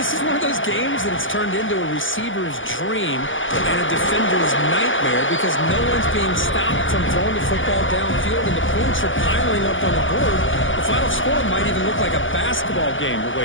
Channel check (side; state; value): right; late; 0.57 ms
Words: is one of those games that it's turned into a receiver's dream and a defender's nightmare because no one's being stopped from throwing the football downfield and the points are piling up on the board. The final score might even look like a basketball game the